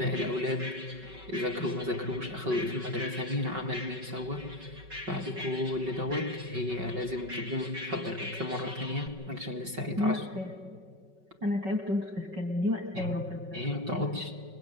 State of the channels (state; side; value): late; left; 5.3 ms